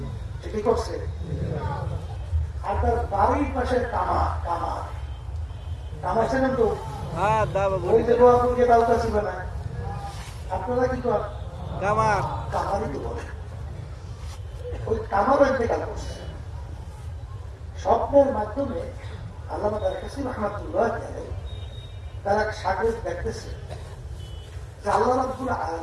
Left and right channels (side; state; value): both; identical; correlation 1.00